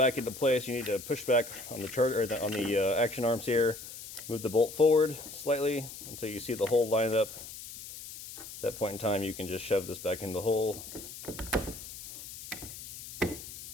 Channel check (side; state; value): left; noise; hiss, 12 dB below the sound